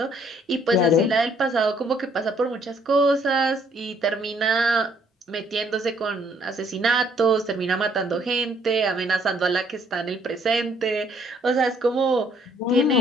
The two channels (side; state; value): both; normal; correlation 0.65